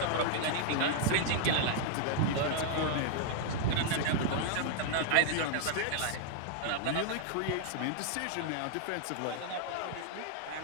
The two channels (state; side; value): different; both; correlation -0.01